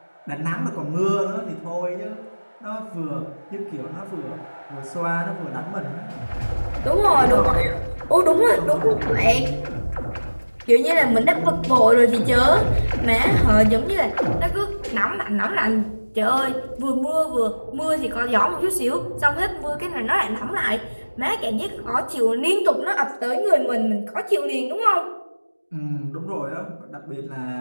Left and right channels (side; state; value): both; inverted; correlation -1.00